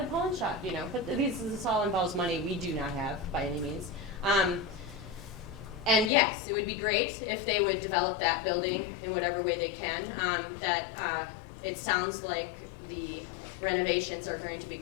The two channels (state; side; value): drops out; right; at 6.1 s